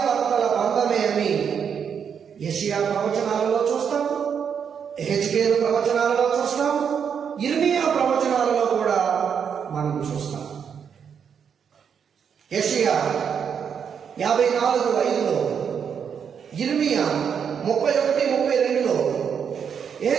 బంధమే అని యెషయా ప్రవచనాలలో చూస్తాం, హెజ్కేలు ప్రవచనాలలో చూస్తాం, ఇర్మియా ప్రవచనాలలో కూడా మనం చూస్తాం. యెషయా 54:5లో, ఇర్మియా 31:32లో,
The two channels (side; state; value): left; quieter; 7.3 dB